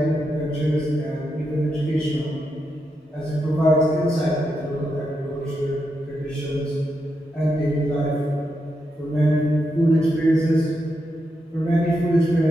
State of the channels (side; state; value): both; normal; correlation 0.84